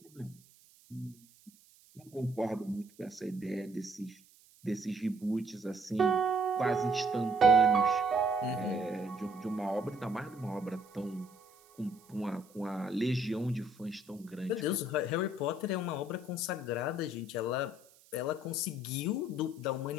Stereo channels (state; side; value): noise; right; hiss, 27 dB below the sound